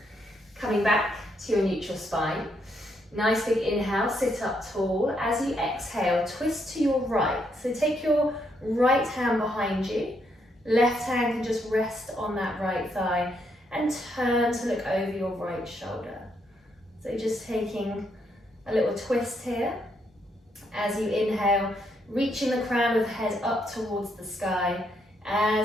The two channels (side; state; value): both; normal; correlation 0.76